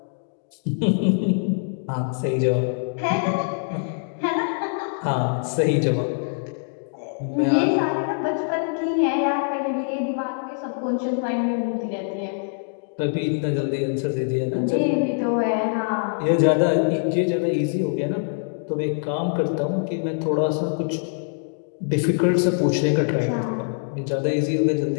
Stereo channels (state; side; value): silent; right; digital silence